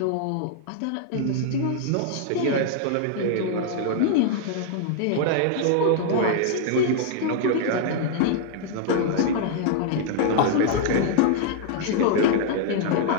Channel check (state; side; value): different; both; correlation 0.00